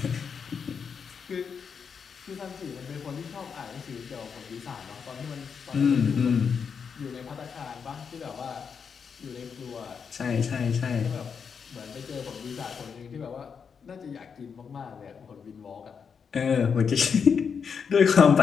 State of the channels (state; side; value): quieter; right; 6.4 dB